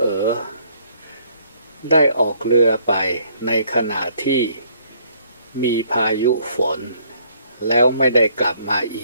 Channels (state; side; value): inverted; both; correlation -0.65